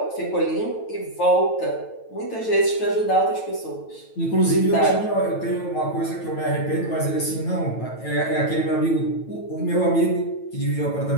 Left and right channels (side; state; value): right; late; 9.1 ms